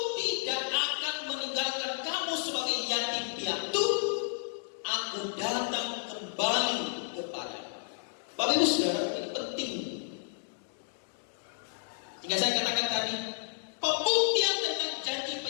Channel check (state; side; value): silent; right; digital silence